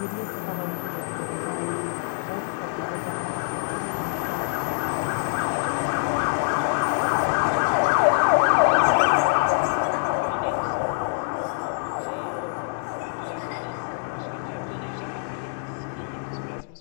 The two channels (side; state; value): right; silent; digital silence